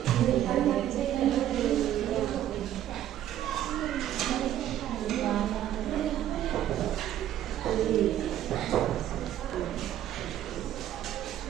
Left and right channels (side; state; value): left; quieter; 11.8 dB